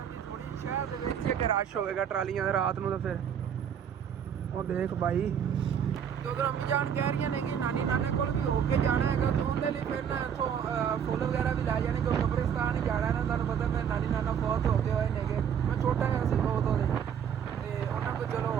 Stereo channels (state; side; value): quieter; left; 8.2 dB